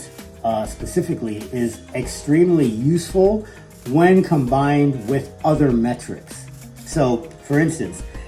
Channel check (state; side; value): identical; both; correlation 1.00